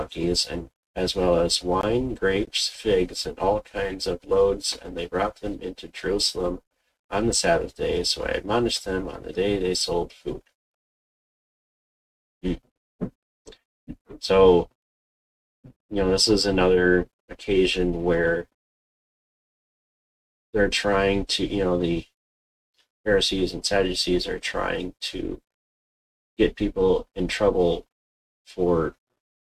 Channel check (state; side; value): identical; both; correlation 1.00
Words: and as well as wine, grapes, figs, and all kinds of loads, and they brought them into Jerusalem on the Sabbath day. So I admonished them on the day they sold food. Hmm. So, this is another occasion where they're trying to, the Pharisees and Sadducees are trying to get people in trouble for